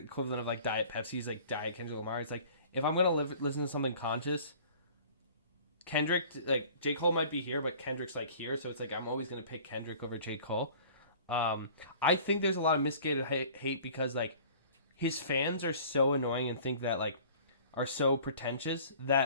of like Diet Pepsi's like Diet Kendrick Lamar. It's like, if I'm gonna listen to something conscious, Kendrick, like J. Cole might be here, but Kendrick's like here, so it's like I'm always gonna pick Kendrick over J. Cole. I think there's a lot of misguided hate because like his fans are so annoying and think that like are so pretentious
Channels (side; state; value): both; inverted; correlation -0.48